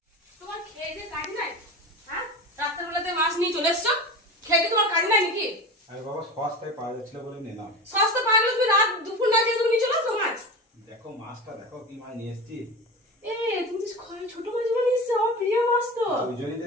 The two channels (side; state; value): both; normal; correlation 0.28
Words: তোমার খেয়ে কাজ নাই? হ্যাঁ, রাত্রেবেলাতে মাছ নিয়ে চলে এসছো, খেয়ে তোমার কাজ নাই নাকি? আরে বাবা, সস্তায় পাওয়া যাচ্ছিল বলে নিলাম। সস্তা পাওয়া গেলে তুমি রাত দুপুর না খেয়ে তুমি নিয়ে চলে আসো মাছ। দেখো মাছটা, দেখো কি মাছ নিয়ে এসছি। তুমি তো ছোট মাছগুলো নিয়ে এসছো, আমার প্রিয় মাছ তো। ওই জন্যই